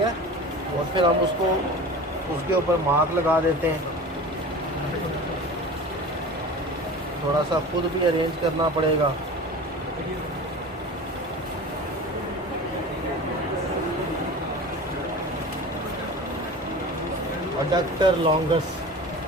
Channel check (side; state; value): both; normal; correlation 0.35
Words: और फिर हम उसको उसके ऊपर मार्क लगा देते हैं। थोड़ा सा खुद भी अरेंज करना पड़ेगा। अडक्टर लॉन्गस